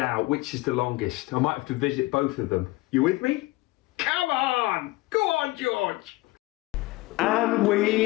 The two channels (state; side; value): quieter; right; 20.7 dB